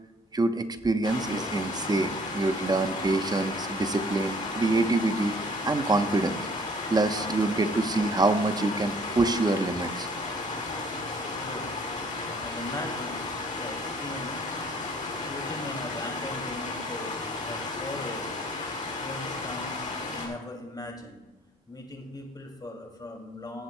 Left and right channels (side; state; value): both; normal; correlation 0.58